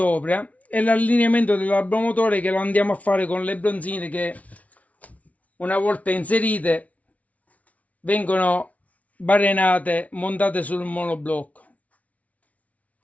e l'allineamento dell'arbomotore che lo andiamo a fare con le bronzine che una volta inserite vengono barenate, montate sul monoblocco.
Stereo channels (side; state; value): right; late; 0.068 ms